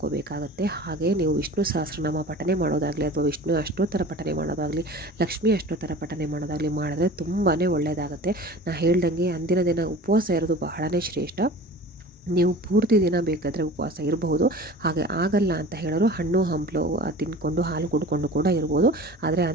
ಹಾಗೆ ನೀವು ವಿಷ್ಣು ಸಹಸ್ರನಾಮ ಪಠನೆ ಮಾಡೋದಾಗಲಿ ಅಥವಾ ವಿಷ್ಣು ಅಷ್ಟೋತ್ತರ ಪಠನೆ ಮಾಡೋದಾಗಲಿ, ಲಕ್ಷ್ಮಿ ಅಷ್ಟೋತ್ತರ ಪಠನೆ ಮಾಡೋದಾಗಲಿ ಮಾಡಿದ್ರೆ ತುಂಬಾ ಒಳ್ಳೆಯದಾಗುತ್ತೆ. ನಾನು ಹೇಳ್ದಂಗೆ ಅಂದಿನ ದಿನ ಉಪವಾಸ ಇರೋದು ಬಹಳನೇ ಶ್ರೇಷ್ಠ. ನೀವು ಪೂರ್ತಿ ದಿನ ಬೇಕಾದರೆ ಉಪವಾಸ ಇರಬಹುದು. ಹಾಗೆ ಆಗಲ್ಲ ಅಂತ ಹೇಳೋರು ಹಣ್ಣು ಹಂಪಲು ತಿನ್ಕೊಂಡು ಹಾಲು ಕುಡ್ಕೊಂಡು ಕೂಡ ಇರ್ಬೋದು. ಆದರೆ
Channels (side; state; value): both; normal; correlation 0.40